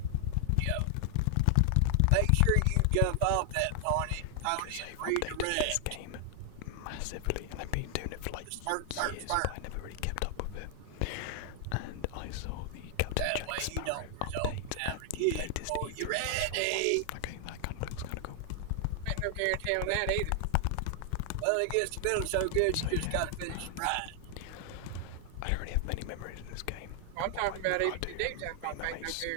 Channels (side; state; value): both; different; correlation 0.00